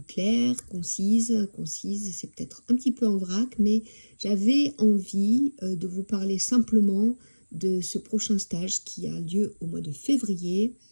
claire, concise, c'est peut-être un petit peu en vrac, mais j'avais envie de vous parler simplement de ce prochain stage qui a lieu au mois de février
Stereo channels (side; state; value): both; inverted; correlation -1.00